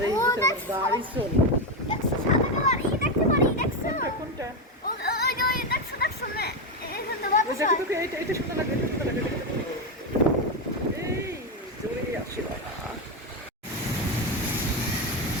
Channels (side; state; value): both; normal; correlation 0.09